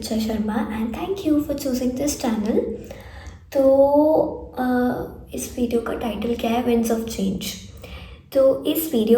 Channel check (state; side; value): identical; both; correlation 1.00